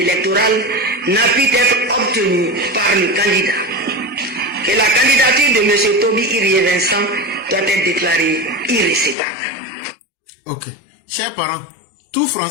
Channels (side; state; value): right; drops out; at 9.2 s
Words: n'a pu être obtenu par le candidat. Que la candidature de M. Toby Irie Vincent doit être déclarée irrécevable. Ok. Chers parents, tout